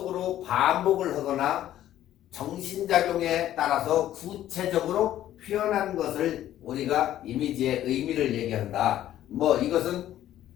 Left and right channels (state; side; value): quieter; right; 12.6 dB